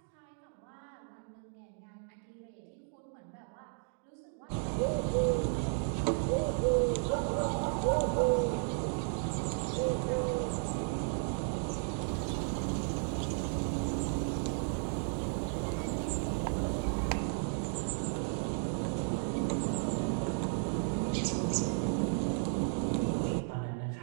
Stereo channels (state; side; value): silent; left; 55 dB below the other